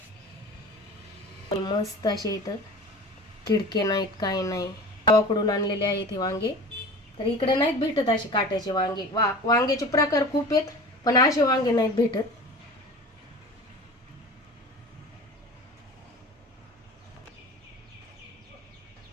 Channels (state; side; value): normal; both; correlation 0.36